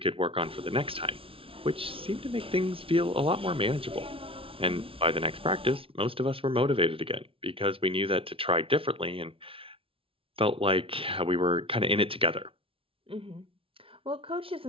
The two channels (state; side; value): late; left; 0.26 ms